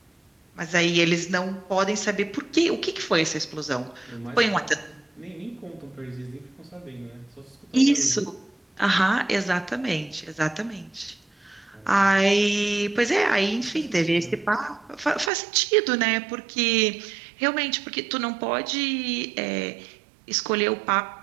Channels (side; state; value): left; drops out; at 15.3 s